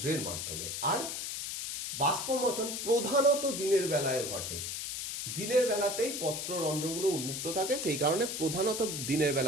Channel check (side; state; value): left; noise; hiss, 4 dB below the sound